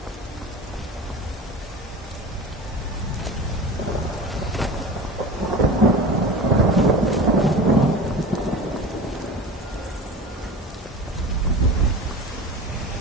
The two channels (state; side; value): normal; both; correlation 0.33